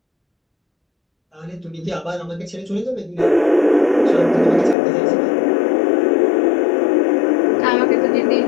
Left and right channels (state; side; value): drops out; right; at 4.8 s